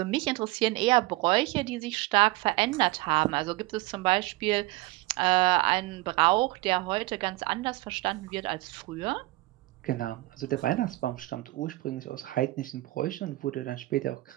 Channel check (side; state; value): left; quieter; 19.8 dB